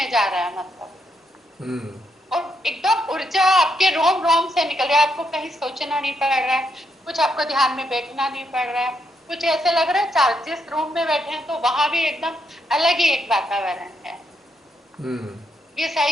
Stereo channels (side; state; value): both; normal; correlation 0.78